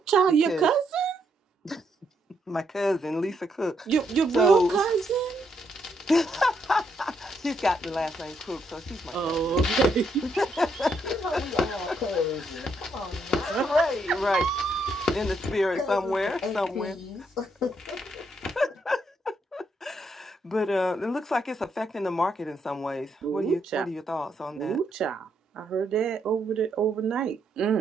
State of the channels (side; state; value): both; normal; correlation 0.76